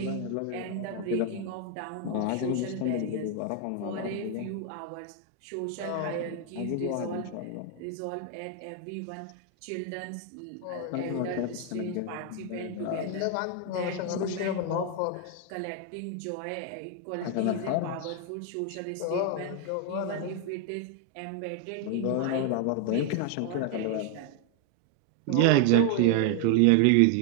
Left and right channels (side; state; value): both; different; correlation 0.00